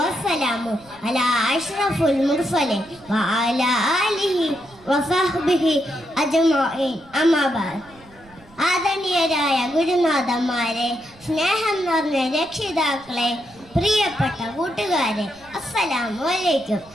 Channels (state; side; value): noise; right; rumble, 26 dB below the sound